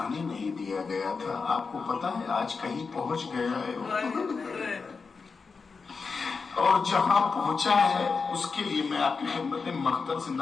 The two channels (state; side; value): quieter; right; 4.9 dB